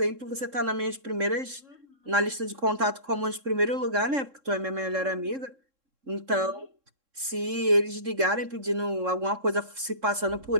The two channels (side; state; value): left; late; 3.7 ms